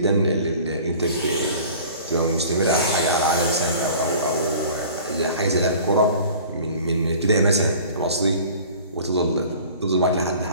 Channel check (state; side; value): inverted; both; correlation -0.45